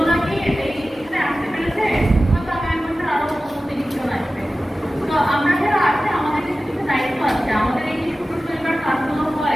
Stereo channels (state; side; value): normal; both; correlation 0.95